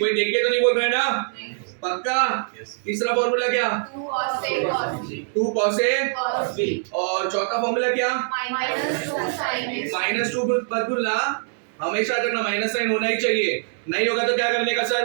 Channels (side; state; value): left; silent; digital silence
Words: देख के तो नहीं बोल रहे ना? पक्का? तीसरा फॉर्मूला क्या? 2 cos a cos b। 2 cos a cos b। और चौथा फॉर्मूला क्या? -2 sin a। -2 मत भूलना, हमेशा रखना, माइनस साइन होना ही चाहिए। नहीं होगा तो क्या करने का